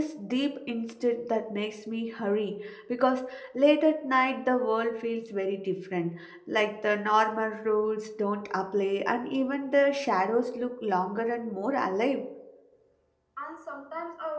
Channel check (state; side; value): identical; both; correlation 1.00